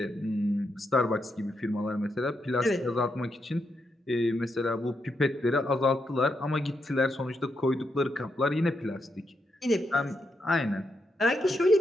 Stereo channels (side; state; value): both; normal; correlation 0.82